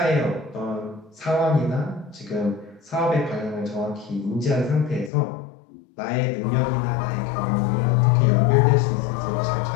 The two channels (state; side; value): drops out; right; at 5.1 s